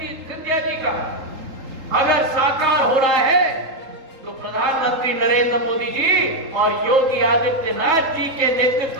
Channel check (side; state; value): left; late; 3.8 ms